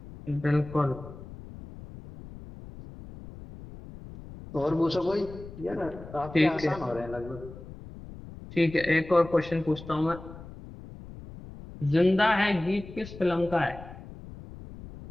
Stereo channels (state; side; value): noise; left; rumble, 15 dB below the sound